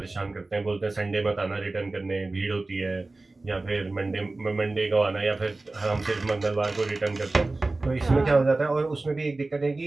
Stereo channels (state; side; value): quieter; left; 3.2 dB